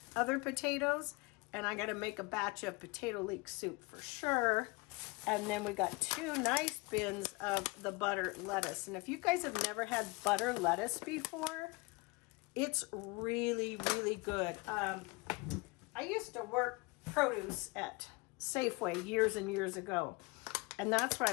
other potatoes, and I gotta make a batch of potato leek soup for sure. And then we got 2 nice bins of the butter lettuce. And if you guys have never had butter lettuce before, it's really, really good. I used to work produce at Safeway years and years ago. And that's where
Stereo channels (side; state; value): right; quieter; 26.3 dB